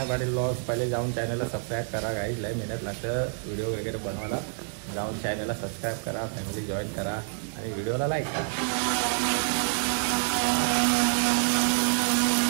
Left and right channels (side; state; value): left; silent; 60 dB below the other